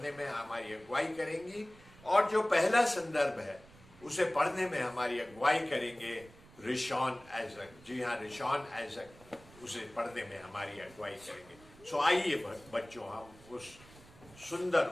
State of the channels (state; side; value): noise; right; rumble, 23 dB below the sound